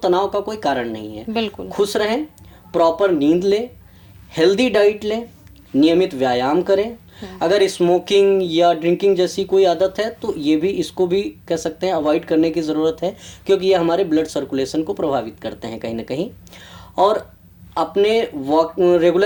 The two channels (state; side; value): identical; both; correlation 1.00